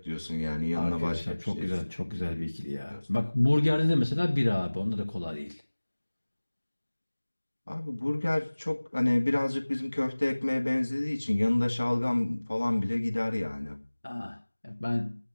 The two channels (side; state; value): both; inverted; correlation -1.00